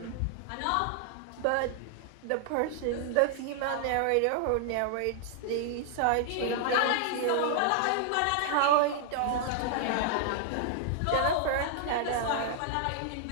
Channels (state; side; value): different; both; correlation 0.00